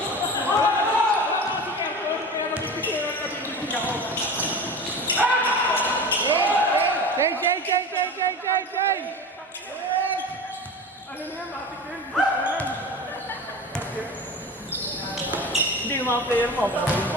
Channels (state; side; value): normal; both; correlation 0.32